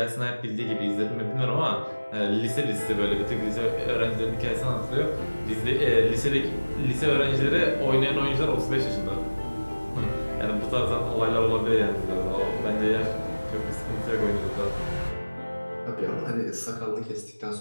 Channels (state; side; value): inverted; both; correlation -1.00